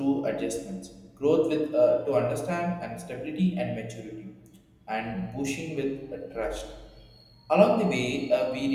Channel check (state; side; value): identical; both; correlation 1.00